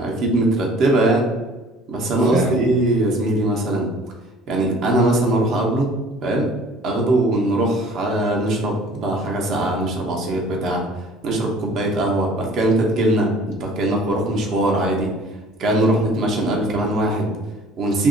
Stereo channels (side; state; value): both; normal; correlation 0.50